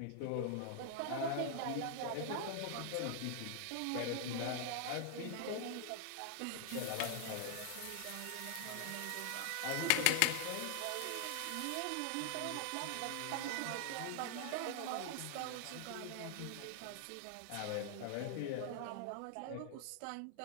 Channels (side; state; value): both; different; correlation 0.00